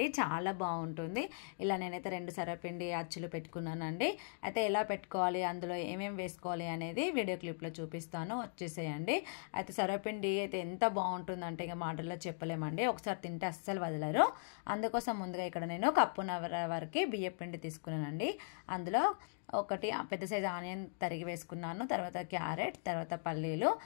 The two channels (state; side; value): silent; right; digital silence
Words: చాలా బాగుంటుంది. ఇలా నేనైతే 2 సర్వపిండి అచ్చులు పెట్టుకున్నానండి. అయితే ఎలా పెట్టుకోవాలి, అందులో ఏమేమి వేసుకోవాలి అనేది వీడియో క్లిప్లో చూపిస్తాను, వచ్చేసేయండి. అయితే సర్వపిండి అయితే ఎంత బాగుంటుందంటే ఇక మాటల్లో చెప్పలేమండి. ఒకసారి తింటే అస్సలు వదలరు. అందుకోసం ముందుగా ఇక్కడ నేను కప్పున్నర వరకు బియ్యపిండి తీసుకున్నానండి. అందులో ఒకటి పెద్ద సైజు ఆనియన్ తరిగి వేసుకున్నాను, తర్వాత క్యారెట్, తర్వాత